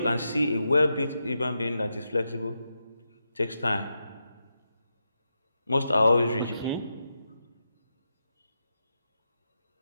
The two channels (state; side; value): inverted; both; correlation -0.87